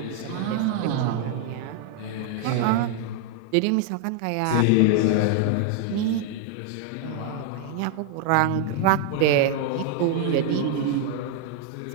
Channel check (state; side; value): different; both; correlation 0.00